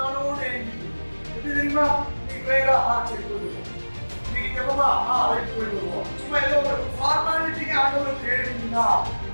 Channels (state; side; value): inverted; both; correlation -1.00